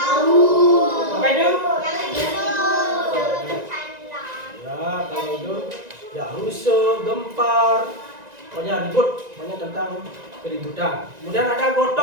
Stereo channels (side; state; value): left; late; 1.9 ms